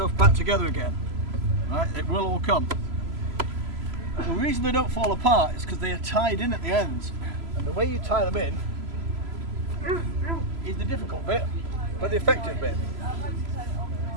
back together again. Right? It will all come. The reason they don't fall apart is because they are tied in at the ends. And the way you tie them in is the difficult bit, but the effective bit.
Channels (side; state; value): left; late; 3.0 ms